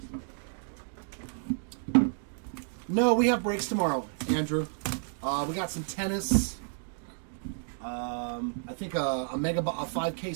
No, we have breaks tomorrow, Andrew. We got some tennis. I think a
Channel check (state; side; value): silent; left; digital silence